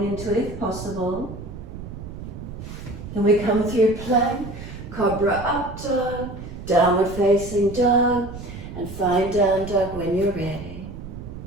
into it if possible. Then we come through plank, cobra up dog, downward facing dog, and find down dog when you're ready.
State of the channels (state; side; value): noise; right; rumble, 11 dB below the sound